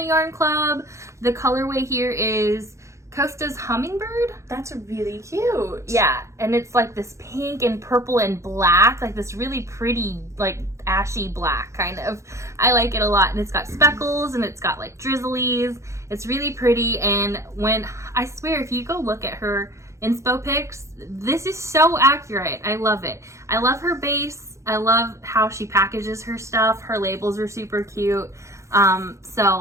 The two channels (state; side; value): late; left; 0.14 ms